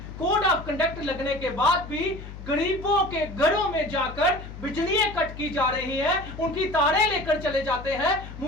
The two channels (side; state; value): left; noise; hum, 12 dB below the sound